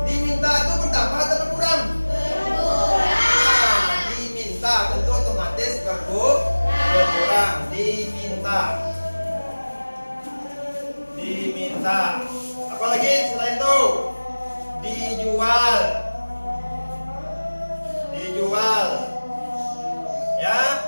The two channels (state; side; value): inverted; both; correlation -1.00